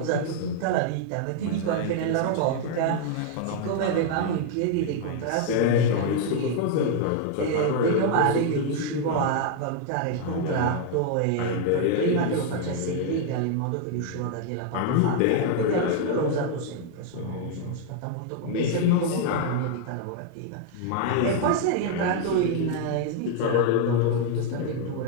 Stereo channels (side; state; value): both; different; correlation 0.00